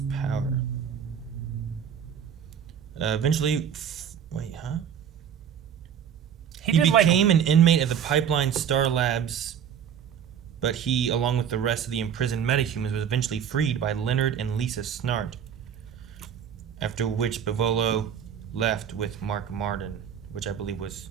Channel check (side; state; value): left; quieter; 8.4 dB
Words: power? Eventually, He became an inmate of the Pipeline Star Labs, but he, along with the rest of the imprisoned metahumans, was eventually freed by Leonard and Lisa Snart. After which Bivolo left with Mark Martin, which I believe was